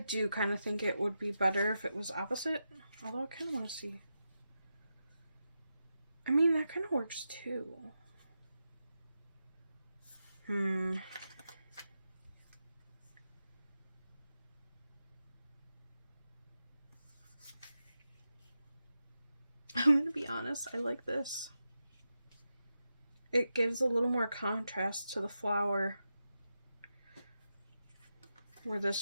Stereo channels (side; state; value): both; inverted; correlation -0.90